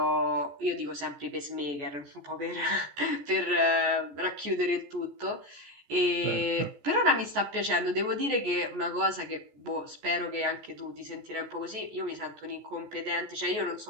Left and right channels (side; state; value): left; late; 14 ms